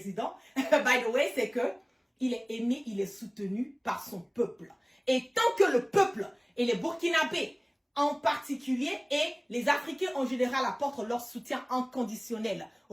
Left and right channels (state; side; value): identical; both; correlation 1.00